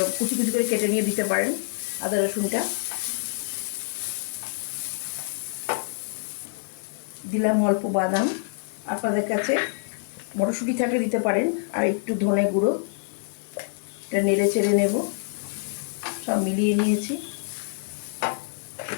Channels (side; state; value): right; silent; 61 dB below the other